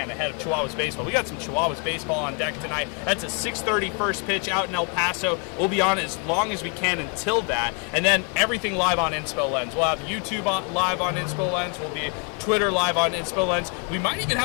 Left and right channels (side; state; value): right; quieter; 36.1 dB